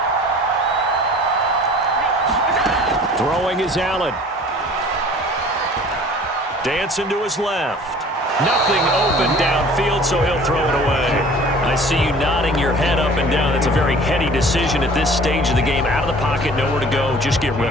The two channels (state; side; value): normal; both; correlation 0.47